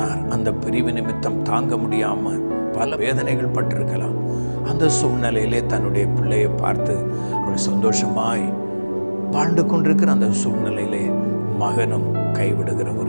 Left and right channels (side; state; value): both; inverted; correlation -1.00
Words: அந்த பிரிவு நிமித்தம் தாங்க முடியாமல் பல வேதனைகள் பட்டிருக்கலாம். அந்த சூழ்நிலையிலே தன்னுடைய பிள்ளையை பார்த்து அவள் சந்தோஷமாய் வாழ்ந்து கொண்டிருக்கிற அந்த சூழ்நிலையிலே மகனும் கைவிடுகிற